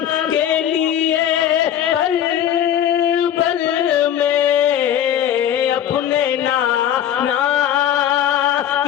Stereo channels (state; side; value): quieter; right; 10.4 dB